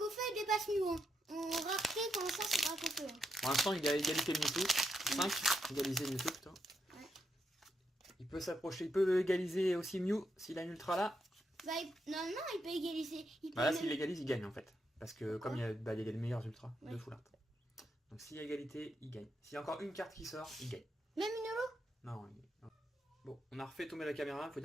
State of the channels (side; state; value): both; normal; correlation 0.82